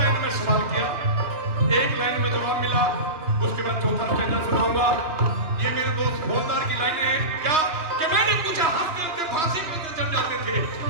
में सवाल किया, 1 लाइन में जवाब मिला। उसके बाद चौथा स्टेजा सुनाऊंगा। ये मेरे दोस्त हवलदार की लाइनें हैं। क्या कि मैंने पूछा हंसते हंसते फांसी कैसे चढ़ जाते थे?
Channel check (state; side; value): late; left; 2.9 ms